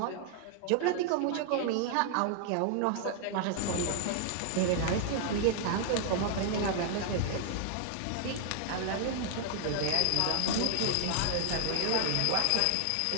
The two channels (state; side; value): different; both; correlation 0.00